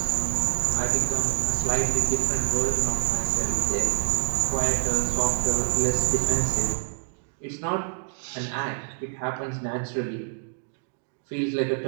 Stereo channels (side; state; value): left; silent; digital silence